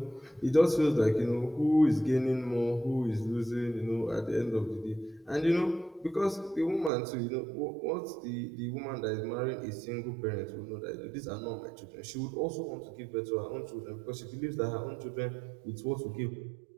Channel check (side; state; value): left; drops out; at 6.9 s